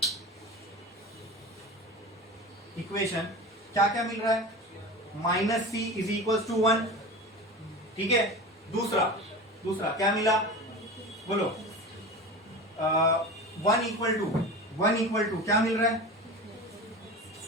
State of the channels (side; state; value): both; normal; correlation 0.31